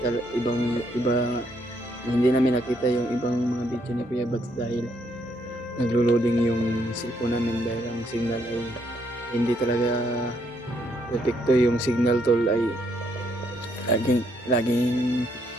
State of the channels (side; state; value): both; normal; correlation 0.73